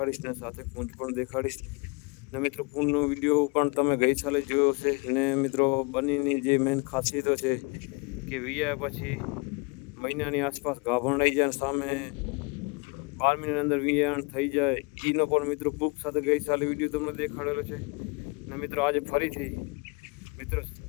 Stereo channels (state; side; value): quieter; right; 30.4 dB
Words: ને સાથે પૂંજ પણ દેખાડીશ. ને મિત્રો પૂંજનો વિડીયો પણ તમે ગઈ સાલે જોયો છે. ને મિત્રો બંનેની જે મેન ખાસિયતો છે કે વિયા પછી મહિનાની આસપાસ ગાભણ રહી જાય, સામે 12 મહિનાની અંદર વિયાણ થઈ જાય. એનો પણ મિત્રો બુક સાથે ગઈ સાલે વિડીયો તમને દેખાડેલો છે. ને મિત્રો આજે ફરીથી મિત્રો